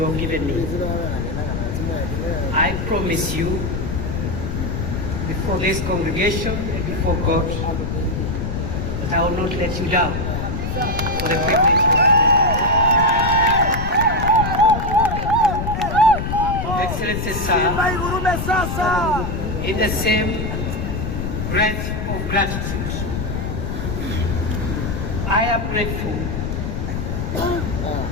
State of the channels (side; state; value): left; noise; rumble, 3 dB below the sound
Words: have given me. I promise you, before this congregation and before God, that I will not let you down for the privilege you have given me. Excellency, sir, in the same breath of gratitude, I am grateful